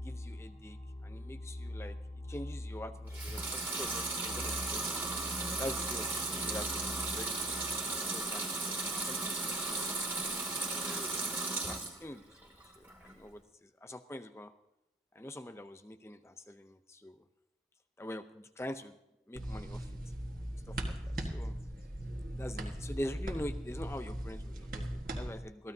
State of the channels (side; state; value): both; normal; correlation 0.58